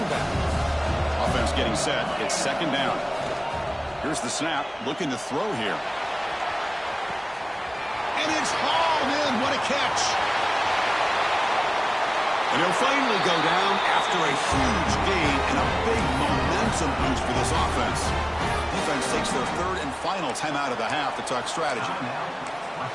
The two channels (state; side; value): identical; both; correlation 1.00